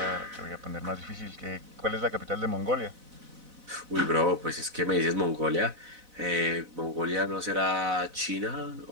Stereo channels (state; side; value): late; left; 4.0 ms